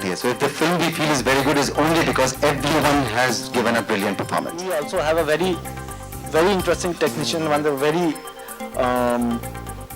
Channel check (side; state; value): both; identical; correlation 1.00